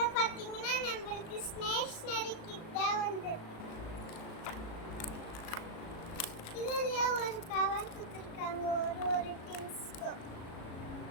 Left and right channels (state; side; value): late; right; 37 ms